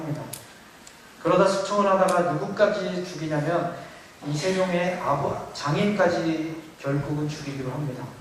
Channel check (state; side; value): identical; both; correlation 1.00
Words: 그러다 숙청을 하다가 누구까지 죽이냐면 이 세종의 장인까지 결국은 죽이기로 합니다.